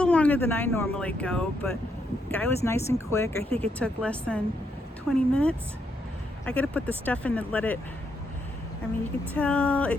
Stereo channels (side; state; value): both; normal; correlation 0.77